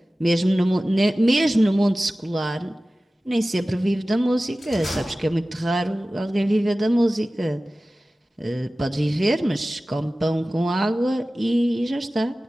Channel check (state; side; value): normal; both; correlation 0.96